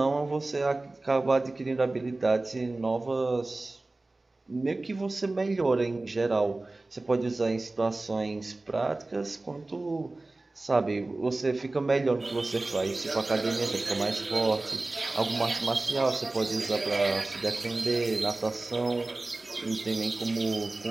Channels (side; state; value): left; quieter; 3.0 dB